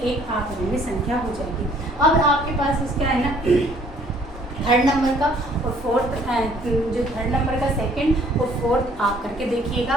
एक अपरिमेय संख्या हो जाएगी। अब आपके पास इसका है ना थर्ड नंबर का और फोर्थ, जो थर्ड नंबर का सेकंड और फोर्थ आप करके देखिएगा।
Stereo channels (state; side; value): normal; both; correlation 0.59